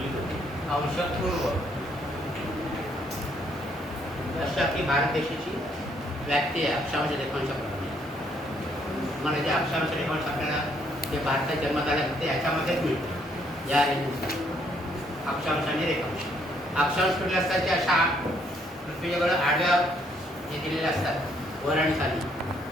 अंश पूर्व अशा की भारत देशाची व्याप्ती आहे अक्षांश रेखांशाप्रमाणे. मला जे अक्षांश रेखांश आपल्याला जे भारतात जन्म झाले ते याच्यामध्येच मिळते. या रेंजनुसार अक्षांश आणि रेखांश. अक्षांश कुठले असतात ते अशा पृथ्वीच्या आडव्या जे दिलेले असतात वर आणि खाली.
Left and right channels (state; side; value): normal; both; correlation 0.69